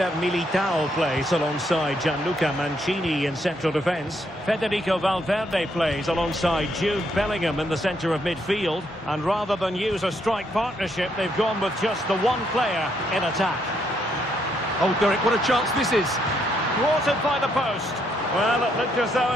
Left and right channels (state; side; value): normal; both; correlation 0.74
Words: Militao plays alongside Gianluca Mancini in central defence. Federico Valverde plays alongside Jude Bellingham in the centre of midfield. And rather than use a strike partnership, they've gone with just the one player in attack. Oh, Derek, what a chance this is. Thwarted by the post. Well, it looked as though